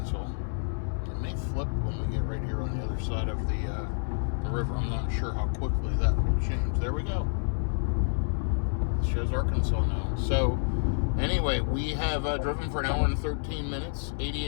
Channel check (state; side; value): silent; right; digital silence